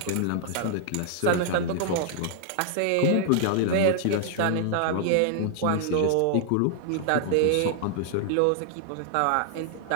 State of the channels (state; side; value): different; both; correlation -0.01